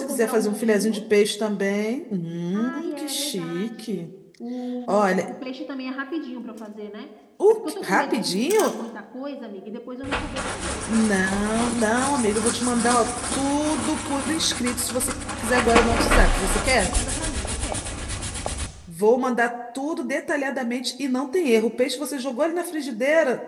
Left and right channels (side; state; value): both; identical; correlation 1.00